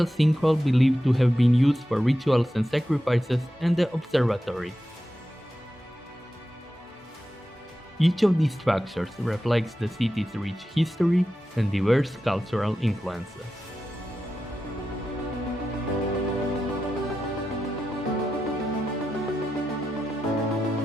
sinkhole believed to have been used for rituals and sacrifices, and the observatory. Each of these structures reflects the city's rich history and diverse cultural influences.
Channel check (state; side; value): normal; both; correlation 0.90